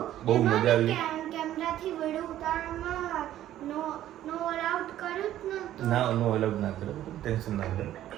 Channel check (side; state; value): left; quieter; 12.7 dB